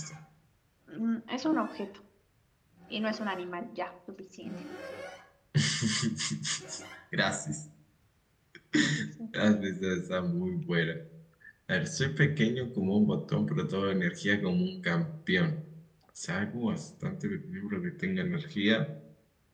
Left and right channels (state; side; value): identical; both; correlation 1.00